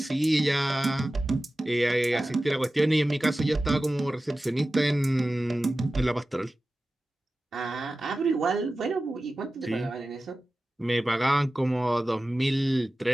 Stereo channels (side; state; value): both; normal; correlation 0.95